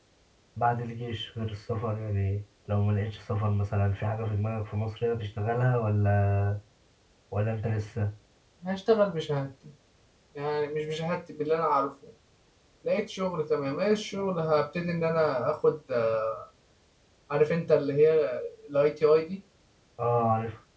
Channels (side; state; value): both; identical; correlation 1.00